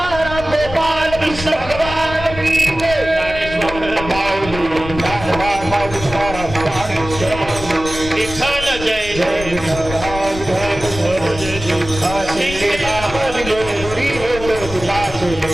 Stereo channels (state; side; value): noise; left; rumble, 10 dB below the sound